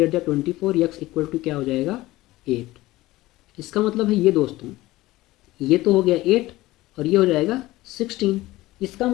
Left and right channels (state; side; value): quieter; right; 18.0 dB